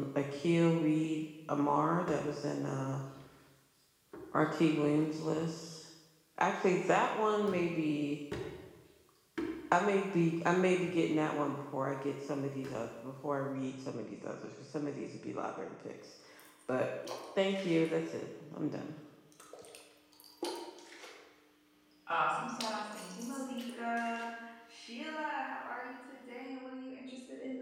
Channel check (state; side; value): identical; both; correlation 1.00